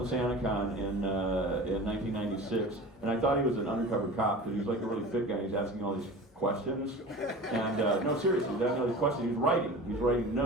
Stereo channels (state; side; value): normal; both; correlation 0.36